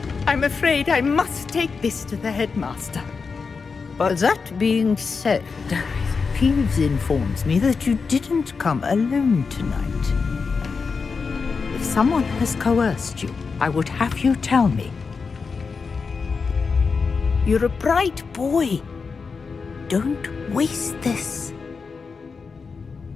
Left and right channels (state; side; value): quieter; right; 5.0 dB